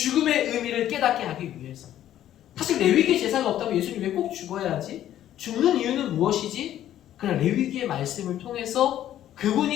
의미를 깨닫게 하기 위해서. 사실 레위기의 제사가 없다면 예수님이 왜 꼭 죽어야 하지? 죽는 이유는 무엇이지? 그러나 레위기의 말씀을 통해서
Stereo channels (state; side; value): quieter; right; 12.0 dB